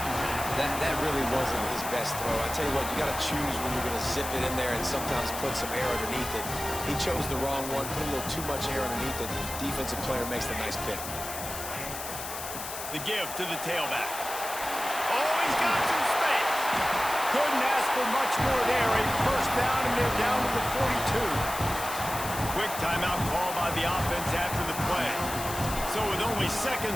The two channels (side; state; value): left; noise; hiss, 8 dB below the sound